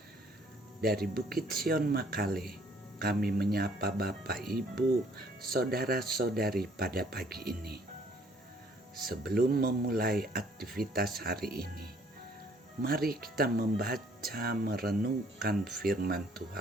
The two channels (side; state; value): both; normal; correlation 0.62